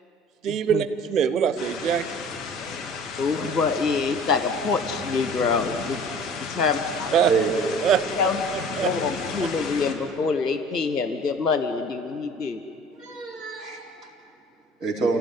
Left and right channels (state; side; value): normal; both; correlation 0.46